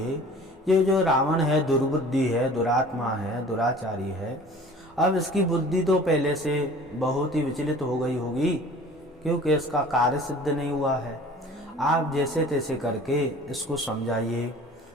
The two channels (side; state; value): both; normal; correlation 0.46